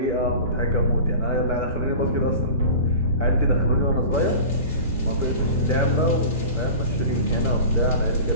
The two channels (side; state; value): both; inverted; correlation -0.36